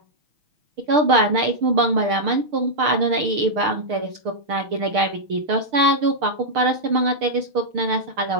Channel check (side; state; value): left; late; 6.7 ms